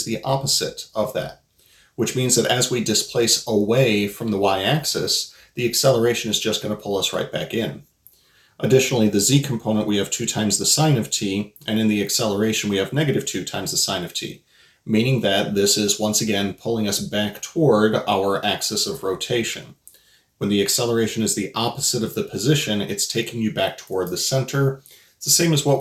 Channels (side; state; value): both; identical; correlation 1.00